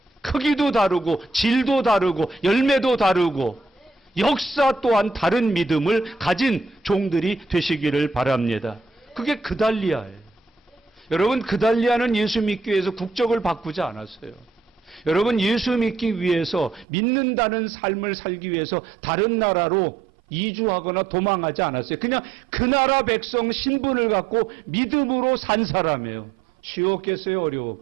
크기도 다르고 질도 다르고 열매도 다르고 역사 또한 다른 믿음을 가진 종들이 되시기를 바랍니다. 그게 그달리아예요. 여러분, 그달리아는 예수 믿기 위해서 국적을 바꾸지 않았어요. 여러분, 예수 믿기 위해서 믿는다는 삶을 살기 위해서 다른 나라로 이주하거나 도망하지 않았어요. 그냥 그 나라 백성 신분을 갖고 믿음으로 산 사람이에요. 쉬웠겠어요?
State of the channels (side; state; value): left; drops out; at 16.9 s